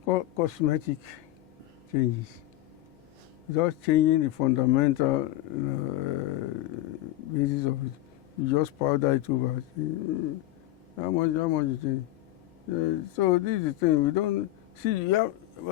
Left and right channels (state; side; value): quieter; right; 15.3 dB